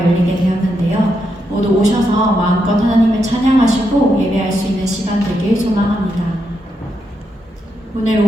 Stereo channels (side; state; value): both; normal; correlation 0.82